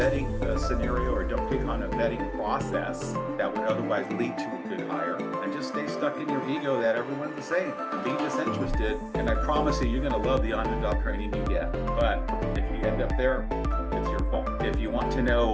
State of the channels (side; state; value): both; identical; correlation 1.00